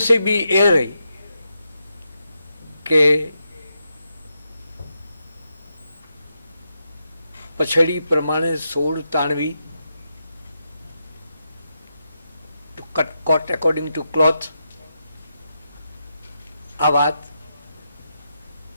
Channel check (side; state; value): both; inverted; correlation -0.84